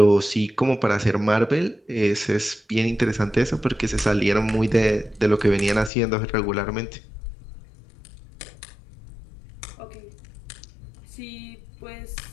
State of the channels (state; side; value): drops out; right; at 5.9 s